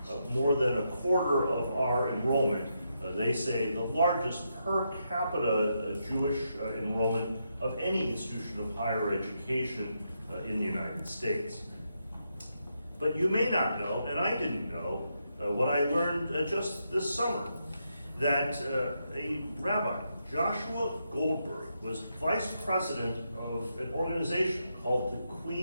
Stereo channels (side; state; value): both; inverted; correlation -0.82